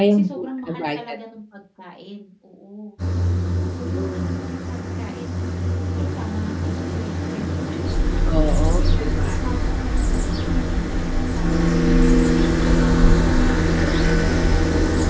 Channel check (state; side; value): identical; both; correlation 1.00